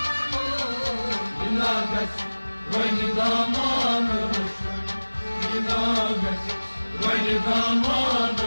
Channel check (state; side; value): inverted; both; correlation -1.00